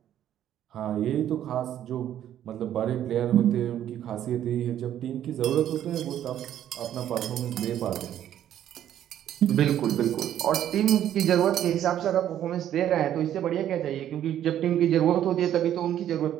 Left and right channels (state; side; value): quieter; left; 11.1 dB